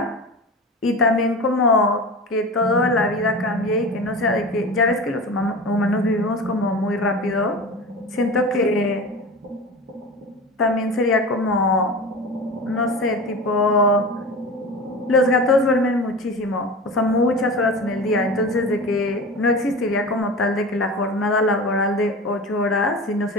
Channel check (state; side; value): normal; both; correlation 0.31